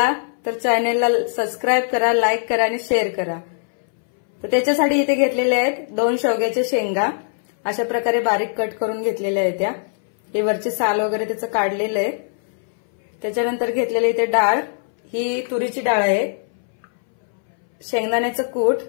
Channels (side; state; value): right; silent; 62 dB below the other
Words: तर चॅनलला सबस्क्राईब करा, लाईक करा आणि शेअर करा। तर त्याच्यासाठी इथे घेतलेले आहेत 2 शेवग्याच्या शेंगा, अशा प्रकारे बारीक कट करून घेतलेल्या आहेत त्या। हे वरचे साल वगैरे त्याचं काढलेलं आहे। त्याच्यानंतर घेतलेले इथे डाळ, ही तुरीची डाळ आहे, शेंगदाण्याचं कूट,